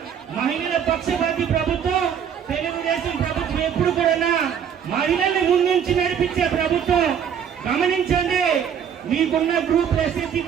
మహిళల పక్షపాతి ప్రభుత్వం. తెలుగుదేశం ప్రభుత్వం ఎప్పుడు కూడా మహిళల్ని ముందుంచి నడిపించే ప్రభుత్వం. గమనించండి, మీకున్న గ్రూప్ ఎస్ఎస్సీ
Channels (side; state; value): left; quieter; 8.2 dB